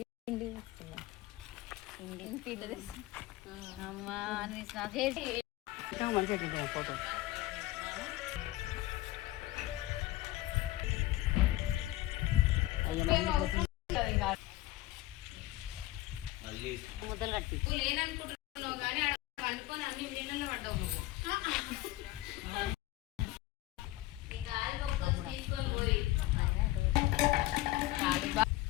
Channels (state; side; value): quieter; right; 16.8 dB